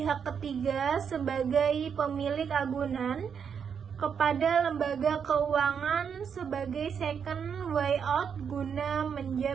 ketiga sebagai pemilik agunan kepada lembaga keuangan sebagai second way out guna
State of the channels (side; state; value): left; quieter; 7.1 dB